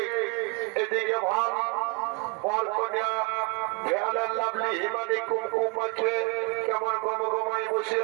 এদিকে ভাব বল কন্যা ভেলার লাভলি হিমানি কুমকুম আছে কেমন গম গমাই বসে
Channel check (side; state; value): left; quieter; 30.8 dB